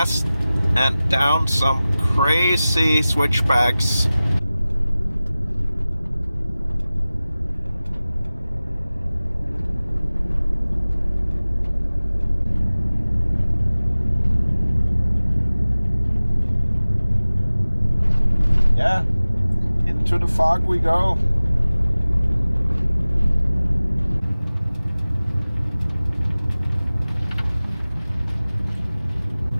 and down some crazy switchbacks. Yeah. To the fog we go.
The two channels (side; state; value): both; inverted; correlation -0.98